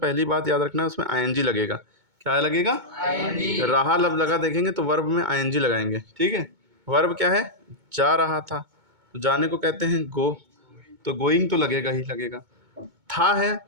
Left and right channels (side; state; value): left; late; 2.2 ms